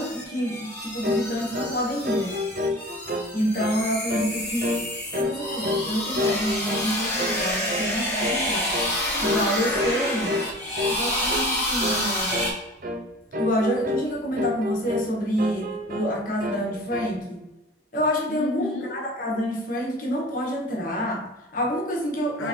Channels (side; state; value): both; normal; correlation 0.40